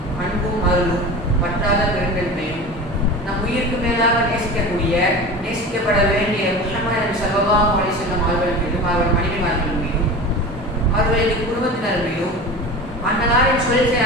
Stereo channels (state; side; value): normal; both; correlation 0.32